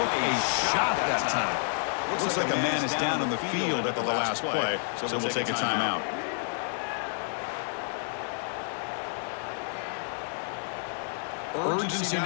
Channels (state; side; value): silent; right; 55 dB below the other